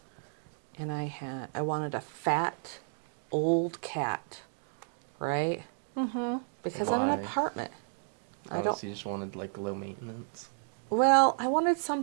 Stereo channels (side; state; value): left; silent; digital silence